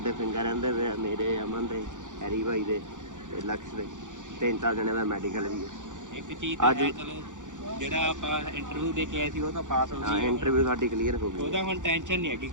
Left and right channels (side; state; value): left; late; 0.86 ms